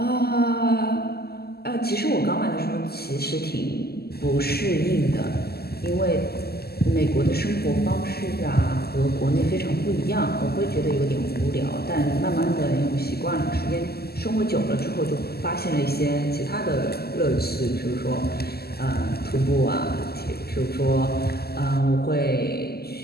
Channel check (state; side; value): late; right; 0.46 ms